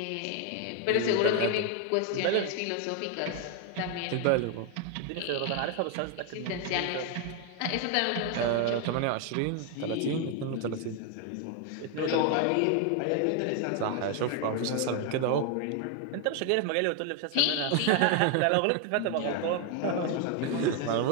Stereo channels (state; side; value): different; both; correlation 0.01